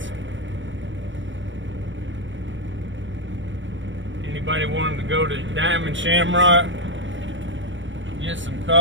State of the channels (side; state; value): left; late; 0.55 ms